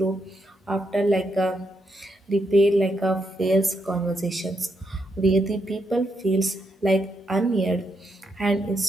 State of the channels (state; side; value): normal; both; correlation 0.80